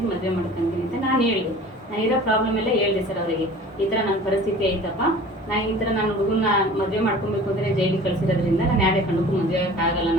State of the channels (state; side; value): normal; both; correlation 0.44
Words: ಅಂತ ನಾನು ಹೇಳಿದೆ. ನಾನು ಇರೋ ಪ್ರಾಬ್ಲಮ್ ಎಲ್ಲ ಹೇಳಿದೆ ಸರ್ ಅವರಿಗೆ. ಈ ಥರ ನನ್ನ ಪರಿಸ್ಥಿತಿ ಐತಪ್ಪ, ನಾನು ಈ ಥರ ನಾನು ಹುಡುಗನ ಮದುವೆ ಮಾಡ್ಕೊಬೇಕು ಅಂದರೆ ಜೈಲಿಗೆ ಕಳಿಸಿರೋದ್ರಿಂದ ನಾನು ಯಾರೇ ಕಂಡಕ್ಕೂ ಮದುವೆ ಆಗೋಕ್ಕಾಗಲ್ಲ.